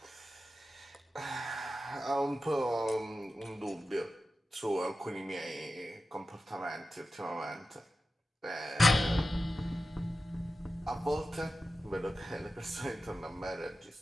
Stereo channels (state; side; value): normal; both; correlation 0.93